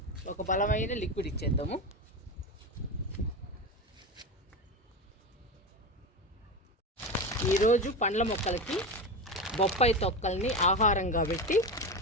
ఒక బలమైన లిక్విడ్ ఇచ్చేద్దాము. ఈరోజు పండ్ల మొక్కలకి బొప్పాయి తొక్కల్ని ఆహారంగా పెట్టి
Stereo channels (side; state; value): both; normal; correlation 0.21